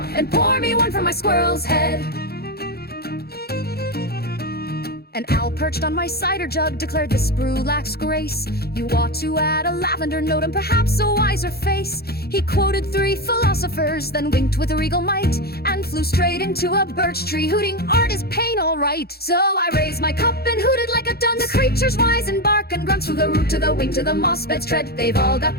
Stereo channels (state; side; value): late; right; 0.46 ms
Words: and pour me one from my squirrel's head. An owl perched on my cider jug declared this brew lacks grace. You ought to add a lavender note and perhaps a wiser face. He quoted 3 philosophers, then winked with a regal might, and flew straight into a birch tree, hooting, "Art is pain, all right." So I raised my cup and hooted like a dun. The creatures wise and bark and grunt, from the root to the wing to the moss bed's tread. They've all